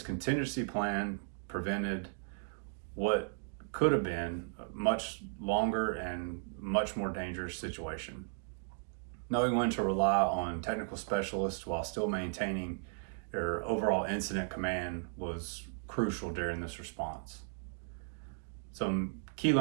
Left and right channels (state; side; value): silent; left; digital silence